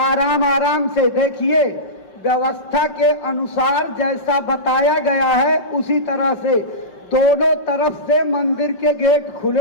आराम से देखिए, व्यवस्था के अनुसार जैसा बताया गया है उसी तरह से दोनों तरफ से मंदिर के गेट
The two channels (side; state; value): right; late; 5.2 ms